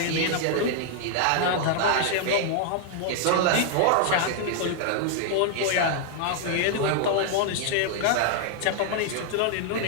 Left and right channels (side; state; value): both; different; correlation -0.01